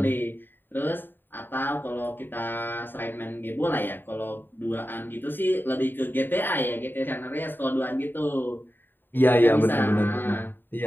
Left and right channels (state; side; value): late; right; 0.094 ms